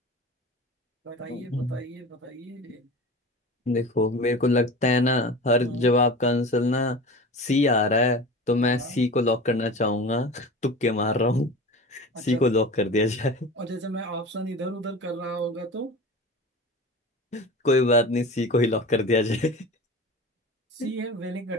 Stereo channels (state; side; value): normal; both; correlation 0.34